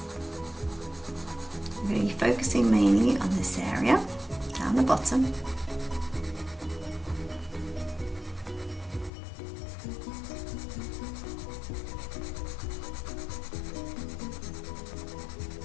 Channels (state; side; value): drops out; right; at 9.1 s